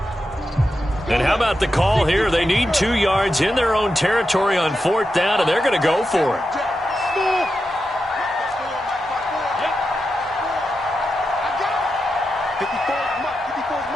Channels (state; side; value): normal; both; correlation 0.88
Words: And how about the call here? They need 2 yards in their own territory on 4th down, and they're going to go for it.